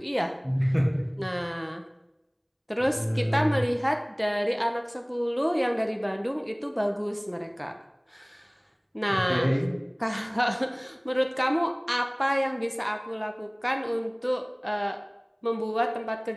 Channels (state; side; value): identical; both; correlation 1.00